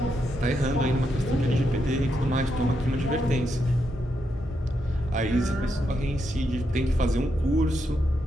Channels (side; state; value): both; normal; correlation 0.82